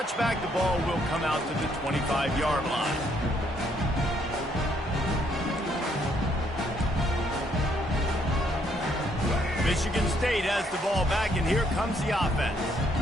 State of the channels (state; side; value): normal; both; correlation 0.70